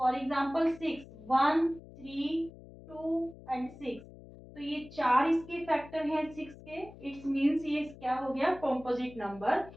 एग्जांपल 6, 1 3 2 एंड 6, तो ये चार इसके फैक्टर हैं 6 के, इट्स मीन्स ये क्या हो गया? Composite number.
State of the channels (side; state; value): left; noise; hum, 18 dB below the sound